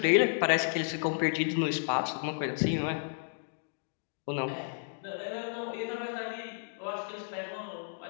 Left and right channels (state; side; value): silent; right; digital silence